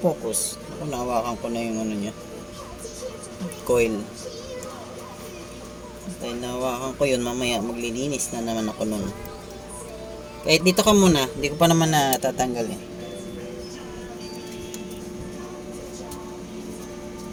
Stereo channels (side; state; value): both; identical; correlation 1.00